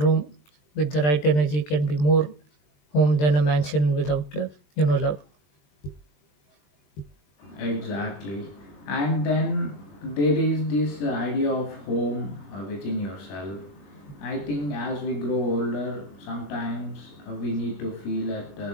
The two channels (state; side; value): late; right; 20 ms